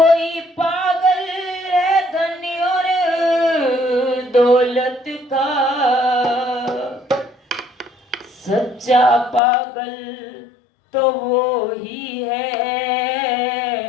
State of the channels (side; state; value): right; drops out; at 9.4 s